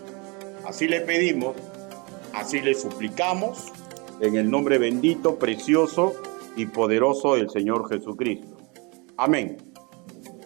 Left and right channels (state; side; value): quieter; left; 29.7 dB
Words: Así le pedimos, así le suplicamos, en el nombre bendito, precioso y poderoso del Señor Jesucristo. Amén.